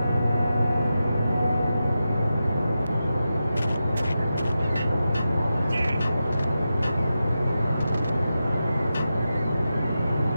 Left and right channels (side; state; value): both; inverted; correlation -0.91